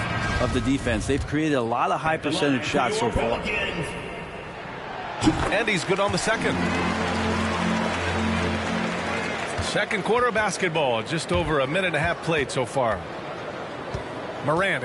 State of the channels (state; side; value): identical; both; correlation 1.00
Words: of the defense. They've created a lot of high percentage shots so far. And he's good on the second. Second quarter of basketball. Just over a minute and a half played so far. Morant